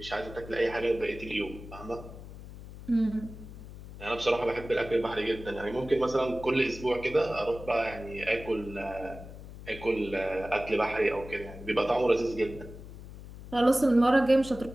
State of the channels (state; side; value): noise; left; hum, 14 dB below the sound